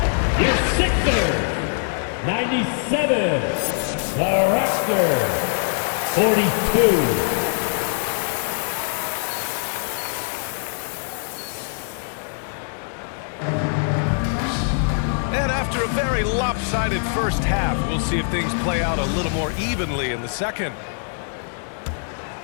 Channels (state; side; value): silent; right; digital silence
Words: Your Sixers, 97. The Raptors, 42. And after a very lopsided first half, we'll see if things play out a little more evenly in the second.